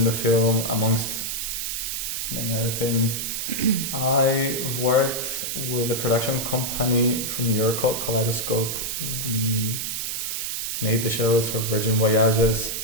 the film, amongst many other things. I've worked with a production company from New York called Kaleidoscope. We made the shows for Virgin Voyages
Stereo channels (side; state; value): right; noise; hiss, 3 dB below the sound